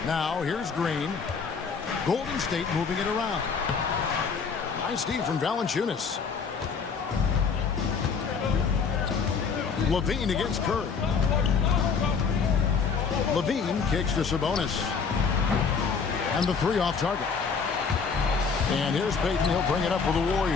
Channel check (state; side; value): quieter; right; 5.6 dB